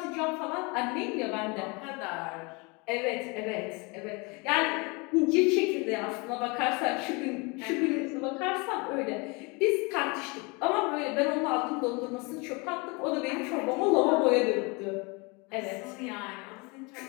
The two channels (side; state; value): right; quieter; 28.7 dB